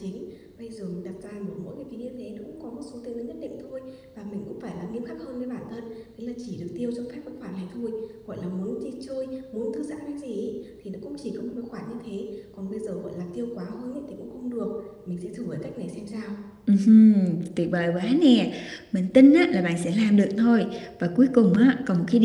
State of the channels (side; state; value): both; identical; correlation 1.00